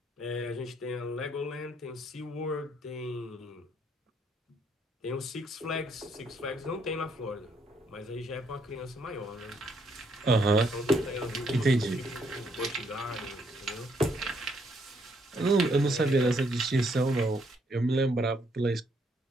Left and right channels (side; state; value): both; normal; correlation 0.71